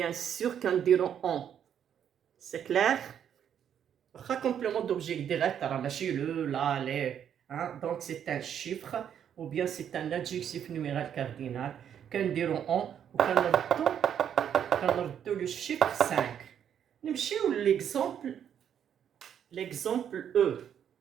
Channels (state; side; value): quieter; left; 9.0 dB